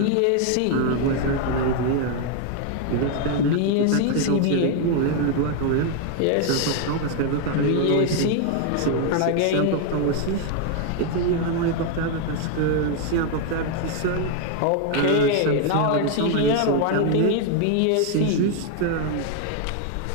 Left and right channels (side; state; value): both; different; correlation 0.00